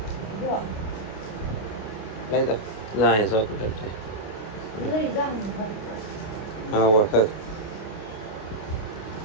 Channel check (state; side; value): late; right; 28 ms